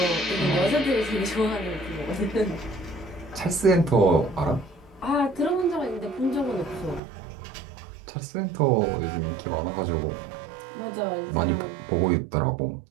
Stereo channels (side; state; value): left; drops out; at 7.0 s